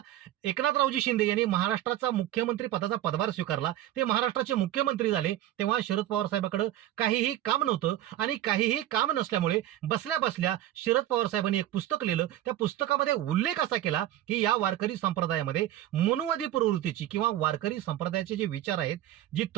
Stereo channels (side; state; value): left; quieter; 13.4 dB